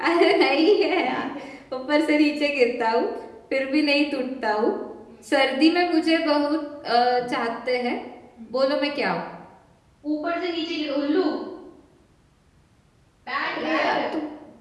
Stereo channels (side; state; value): both; identical; correlation 1.00